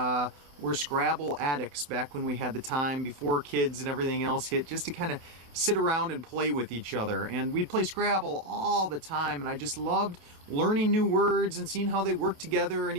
were Scrabble addicts back when we had the time before kids and everything else hit, just to kind of sit around and play with each other. And we'd play Scrabble all the time, and I just loved learning new words and seeing how they work together and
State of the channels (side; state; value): left; late; 28 ms